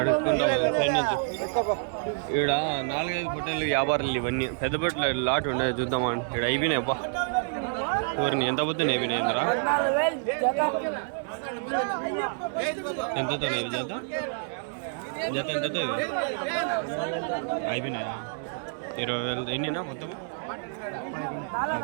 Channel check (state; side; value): silent; left; digital silence